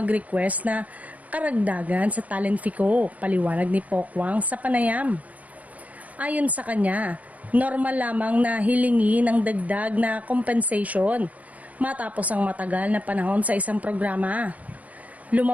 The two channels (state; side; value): late; left; 0.072 ms